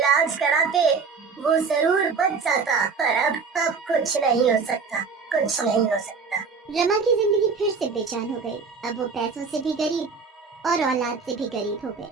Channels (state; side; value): quieter; left; 5.1 dB